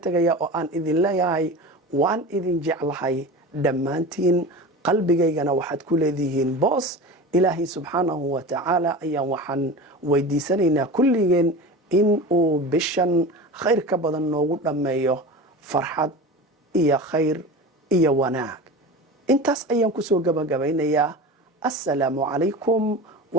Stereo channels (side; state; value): both; normal; correlation 0.31